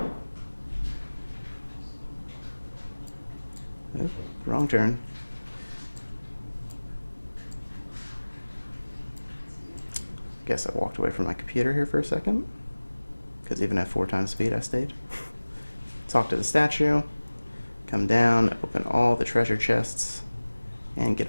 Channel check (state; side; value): inverted; both; correlation -1.00